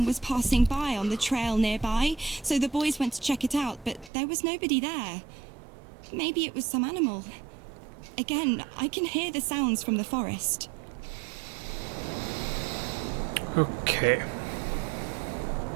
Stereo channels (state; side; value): drops out; left; at 4.1 s